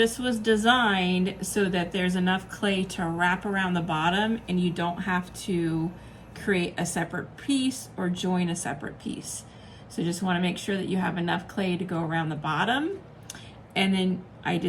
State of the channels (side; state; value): both; identical; correlation 1.00